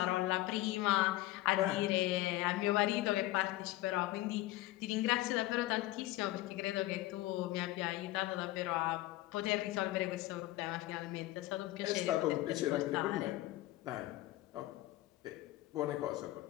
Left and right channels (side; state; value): right; quieter; 17.1 dB